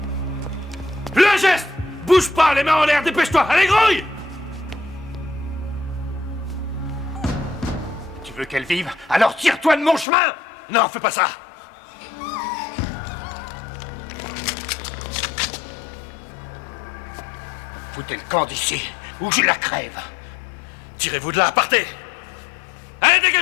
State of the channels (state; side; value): drops out; right; at 10.1 s